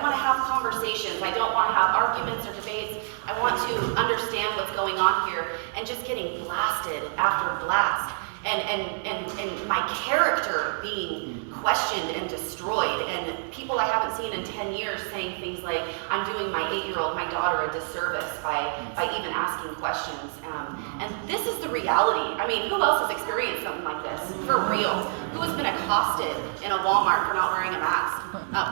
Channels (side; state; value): left; silent; digital silence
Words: want to have conversations. I don't want to have arguments or debates. I want to understand what's going on here, and just getting blasted after blast. And my character being questioned and destroyed, and people I haven't seen in 10 years saying things like, I'm doing my 8-year-old, my daughter, a disservice by even asking questions. And this is the reality. I mean, who else has experienced something like this? For real. Who has been accosted in a Walmart for not wearing a mask?